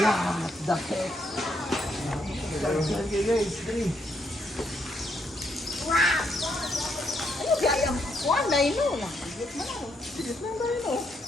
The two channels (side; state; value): both; normal; correlation 0.75